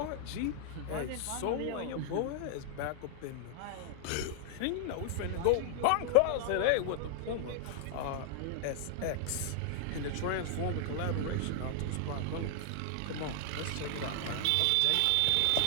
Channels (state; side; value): different; both; correlation 0.00